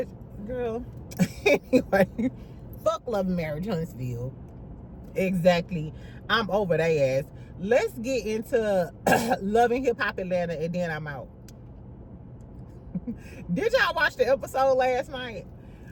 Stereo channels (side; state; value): both; identical; correlation 1.00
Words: girl. Anyway, fuck Love and Marriage Huntsville. Exactly. I'm over their ass. Let's get into Love and Hip Hop Atlanta and then I'm out. Did y'all watch the episode last night?